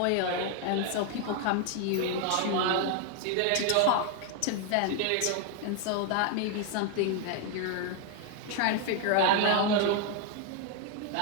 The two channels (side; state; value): both; different; correlation 0.01